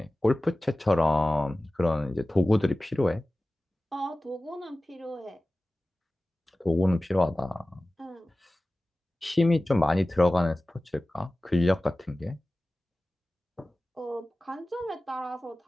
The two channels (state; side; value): normal; both; correlation 0.97